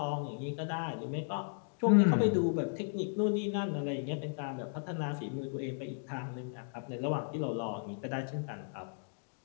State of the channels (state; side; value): silent; right; digital silence